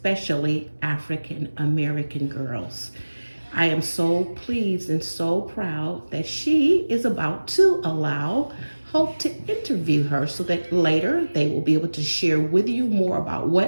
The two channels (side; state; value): both; inverted; correlation -1.00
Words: African American girls. I am so pleased and so proud that she is about to allow Hope to interview her so that later they will be able to share with you more about